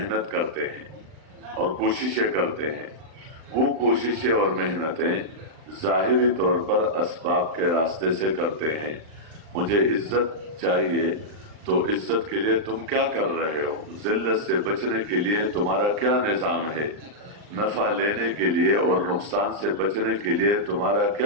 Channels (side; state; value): left; late; 39 ms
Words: करते हैं और कोशिशें करते हैं। वो कोशिशें और मेहनतें ज़ाहिरी तौर पर असबाब के रास्ते से करते हैं। मुझे इज्जत चाहिए, तो इज्जत के लिए तुम क्या कर रहे हो? जिल्लत से बचने के लिए तुम्हारा क्या निज़ाम है? नफा लेने के लिए और नुकसान से बचने के लिए तुम्हारा